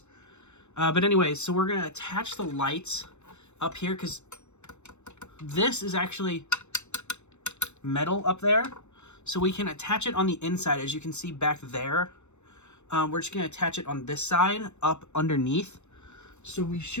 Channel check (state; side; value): late; right; 0.83 ms